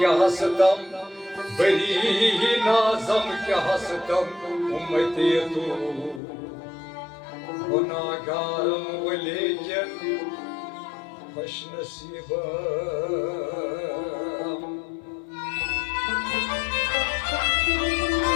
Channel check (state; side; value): drops out; right; at 6.2 s